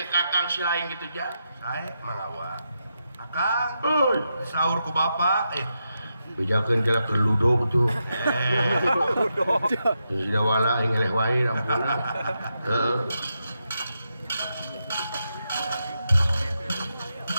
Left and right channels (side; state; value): both; inverted; correlation -0.85